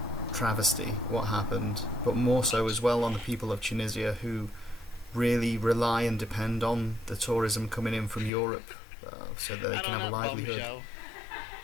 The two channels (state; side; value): drops out; right; at 8.3 s